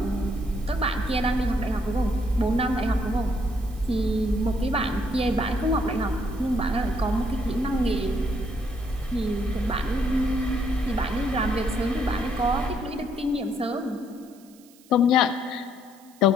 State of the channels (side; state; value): right; noise; hiss, 27 dB below the sound